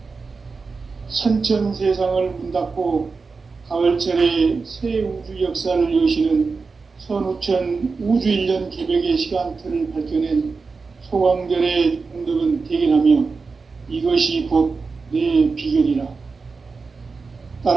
선천 세상을 문 닫고 가을철에 새 우주 역사를 여시는 선우천 우주 1년 개벽의 시간틀을 밝혀낸 소강절의 공덕은 대견하며 이것이 곧 내 비결이라.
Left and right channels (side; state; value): left; quieter; 4.5 dB